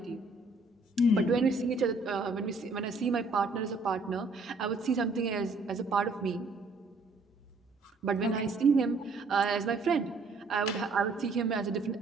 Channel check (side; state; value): left; quieter; 3.4 dB